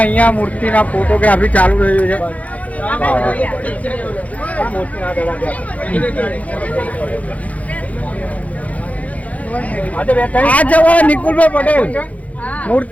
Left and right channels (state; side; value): late; right; 0.069 ms